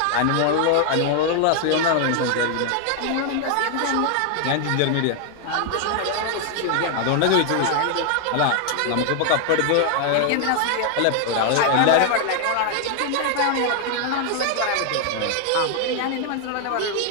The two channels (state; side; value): different; both; correlation 0.00